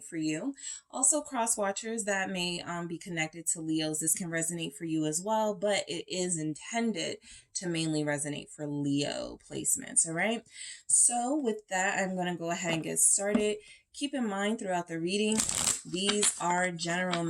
for you. Also, cross watchers that may be connected to Leos, this can resonate for you as well, but it is intended to mainly resonate for Leo placements, all right? So with that, I'm going to go ahead and get started. Keep in mind throughout the reading, these are general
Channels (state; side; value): identical; both; correlation 1.00